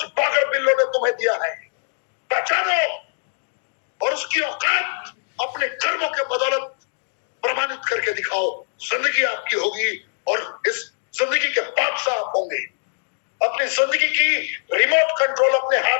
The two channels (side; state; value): right; silent; digital silence